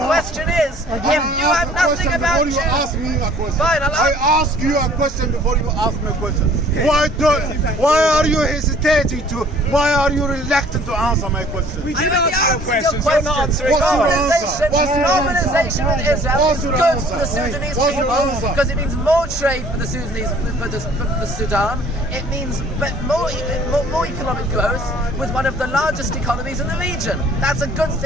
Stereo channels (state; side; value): normal; both; correlation 0.53